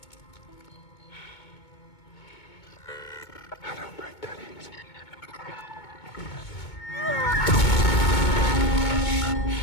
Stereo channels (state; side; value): late; right; 2.2 ms